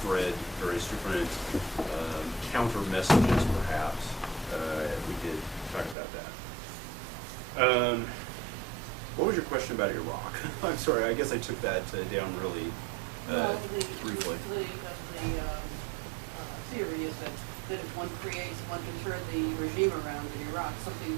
various different counter messages, perhaps. We could talk about that. What was your question about Iraq? I'm sorry, I guess I took that down really briefly. The theory is that if one can turn the regime around in Iraq,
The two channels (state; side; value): drops out; left; at 6.0 s